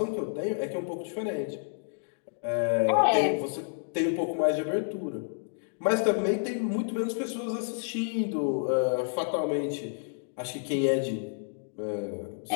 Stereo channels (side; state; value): right; silent; digital silence